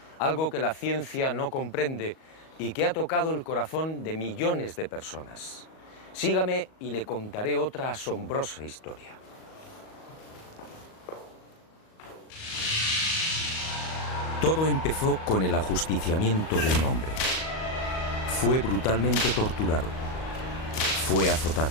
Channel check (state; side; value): late; right; 38 ms